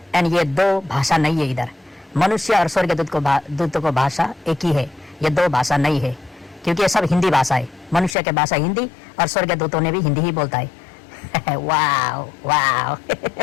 एंड ये दो भाषा नहीं है, इधर मनुष्य और स्वर्गदूतों को भाषा एक ही है, ये दो भाषा नहीं है, क्योंकि ये सब हिंदी भाषा है। मनुष्य के भाषा हिंदी और स्वर्गदूतों ने भी हिंदी ही बोलता है। वाव वाव।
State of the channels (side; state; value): right; drops out; at 8.2 s